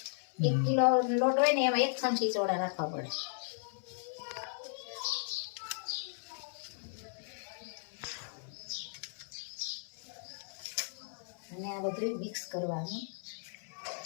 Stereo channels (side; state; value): right; silent; 54 dB below the other